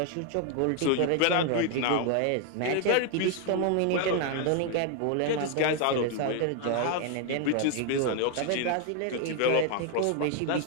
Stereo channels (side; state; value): both; different; correlation 0.01